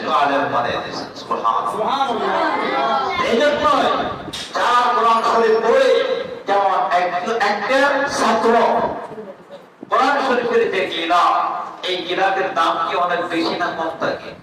আলেম বানিয়ে দিয়েছেন। সুবহানাল্লাহ। এইজন্য যারা কোরআন শরীফ পড়ে, যেমন একটা ছাত্র কোরআন শরীফের যে গিলাফ, এই গিলাফের দাম কি অনেক বেশি না কম থাকে?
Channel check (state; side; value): identical; both; correlation 1.00